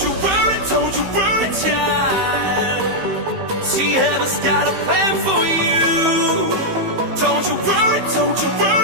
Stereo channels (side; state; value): left; late; 15 ms